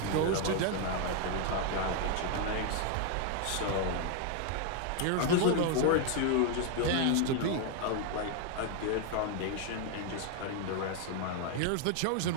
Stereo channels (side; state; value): both; different; correlation 0.00